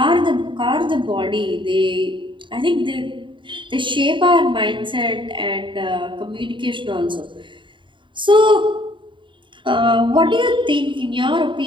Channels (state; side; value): late; left; 0.24 ms